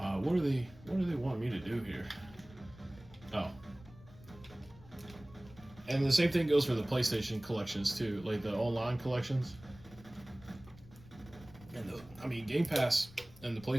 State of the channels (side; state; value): left; noise; rumble, 21 dB below the sound